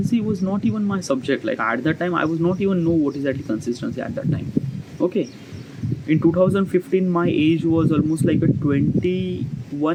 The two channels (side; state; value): both; identical; correlation 1.00